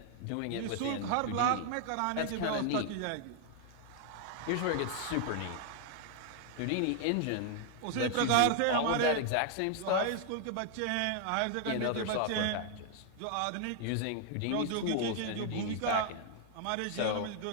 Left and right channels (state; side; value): different; both; correlation 0.00